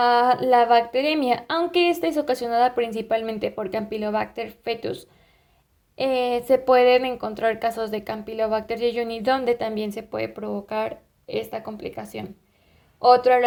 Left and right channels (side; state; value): both; identical; correlation 1.00